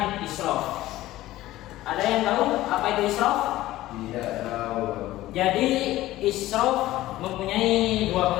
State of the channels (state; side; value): quieter; right; 15.9 dB